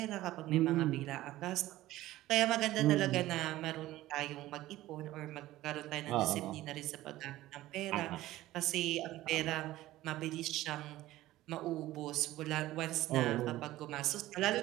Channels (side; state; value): left; quieter; 16.0 dB